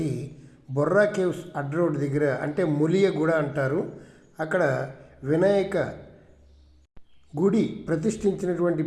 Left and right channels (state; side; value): identical; both; correlation 1.00